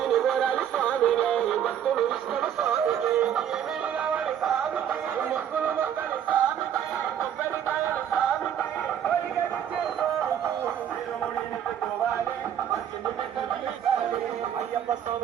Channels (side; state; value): left; quieter; 9.5 dB